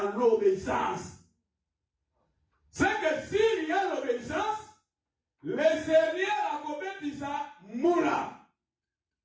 l'obéissance. C'est que s'il y a l'obéissance, les Seigneurs a commis ça moula.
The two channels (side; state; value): both; identical; correlation 1.00